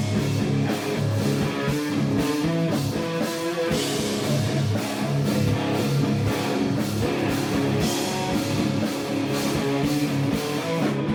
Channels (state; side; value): identical; both; correlation 1.00